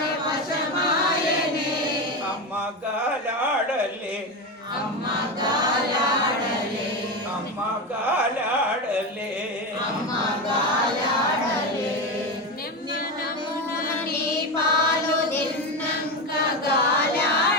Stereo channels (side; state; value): both; normal; correlation 0.17